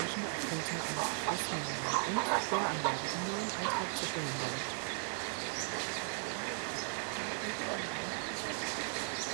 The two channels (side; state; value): left; silent; 53 dB below the other